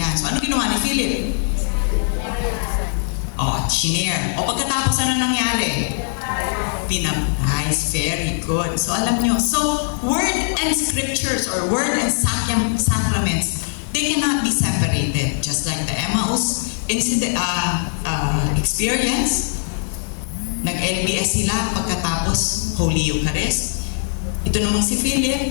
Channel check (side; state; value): right; silent; 63 dB below the other